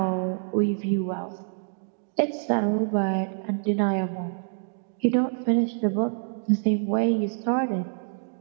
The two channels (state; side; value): silent; left; digital silence